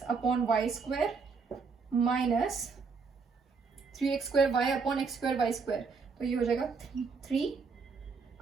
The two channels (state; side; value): quieter; left; 4.9 dB